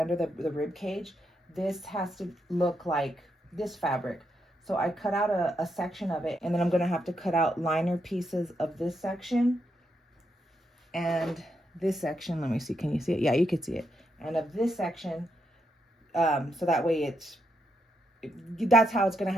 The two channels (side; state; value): both; normal; correlation 0.81